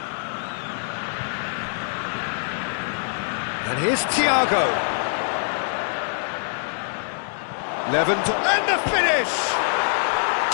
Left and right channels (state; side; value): silent; right; digital silence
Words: And here's Thiago. Lewandowski, and the finish!